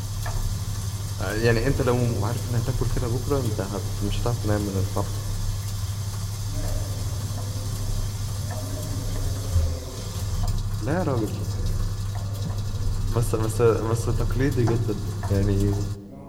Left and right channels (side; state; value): both; identical; correlation 1.00